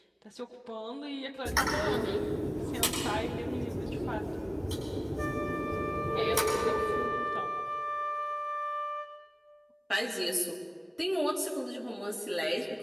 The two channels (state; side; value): identical; both; correlation 1.00